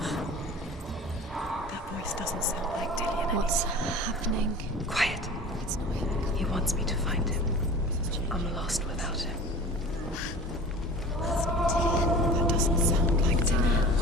Doesn't sound like Dillian. What's happening? Quiet. It's not him. He wants me to find him. I'm lost without him. It's not Dillian. That doesn't sound like Dillian.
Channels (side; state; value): both; normal; correlation 0.40